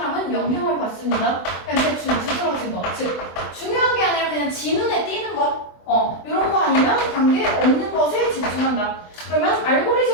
영향을 받습니다. 그냥 대충 두드러진 것, 즉 중요한 게 아니라 그냥 지 눈에 띄는 것, 이런 거 아니면 관계 없는 것에 집중한다. 그러면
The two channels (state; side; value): late; right; 24 ms